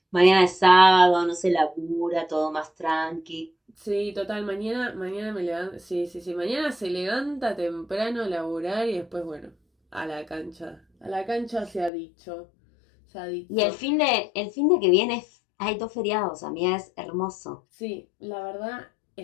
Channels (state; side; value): drops out; right; at 11.9 s